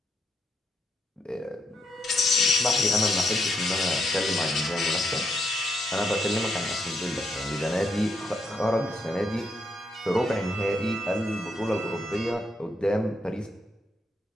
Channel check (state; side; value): normal; both; correlation 0.78